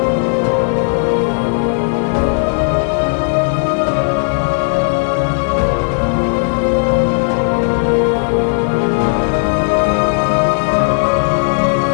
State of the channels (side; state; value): right; silent; digital silence